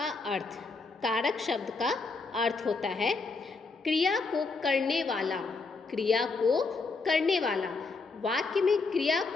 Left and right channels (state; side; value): quieter; right; 4.1 dB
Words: अर्थ। कारक शब्द का अर्थ होता है क्रिया को करने वाला। क्रिया को करने वाला। वाक्य में क्रिया